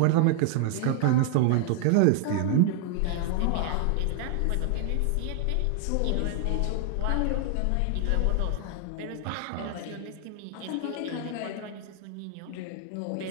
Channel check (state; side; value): different; both; correlation 0.00